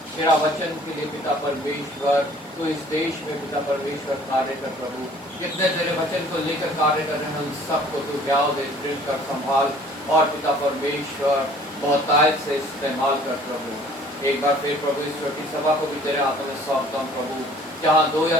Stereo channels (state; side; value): normal; both; correlation 0.53